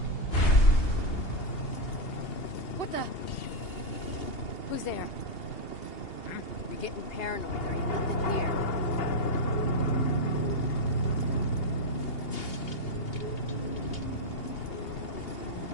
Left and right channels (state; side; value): late; right; 2.8 ms